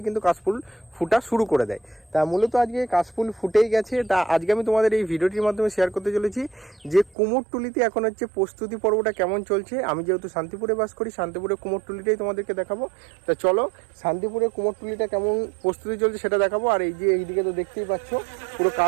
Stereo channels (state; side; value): drops out; left; at 7.2 s